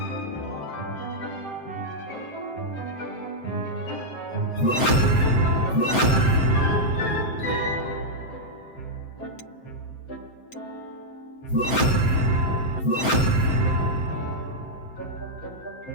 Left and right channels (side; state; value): right; late; 7.7 ms